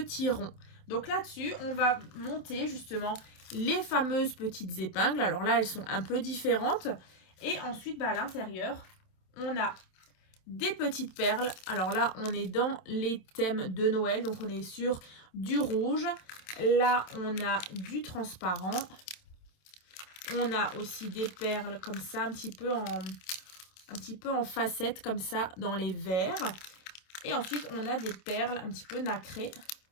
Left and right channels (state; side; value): late; right; 27 ms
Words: ronds. Donc là-dessus, on va monter justement les fameuses petites épingles. Alors là, elles sont un peu différentes. Et ensuite, à l'intérieur, on a des petites perles. Alors là, on est dans les thèmes de Noël. Donc, on est sur du rouge. Là, on a du transparent. On a aussi des perles comme ça, un petit peu en facettes comme ça dans les verts. Et ensuite, on a des perles un petit peu nacrées